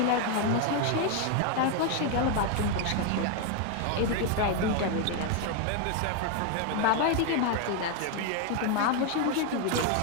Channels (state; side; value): different; both; correlation 0.01